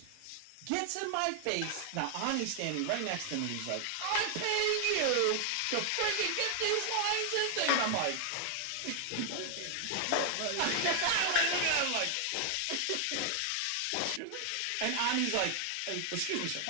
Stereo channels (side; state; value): both; different; correlation 0.00